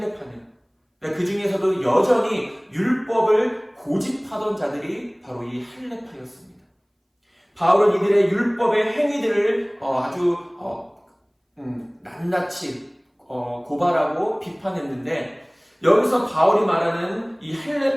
그 중에서도 여전히 율법을 고집하던 자들이 바로 이 할례파였습니다. 바울은 이들의 율법의 행위들을 아주 낱낱이 고발하고 비판했는데 여기서 바울이 말하는 이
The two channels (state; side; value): identical; both; correlation 1.00